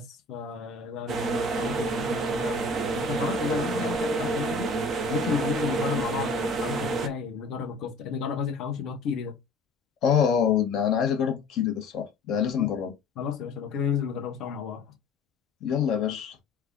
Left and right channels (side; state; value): right; quieter; 3.1 dB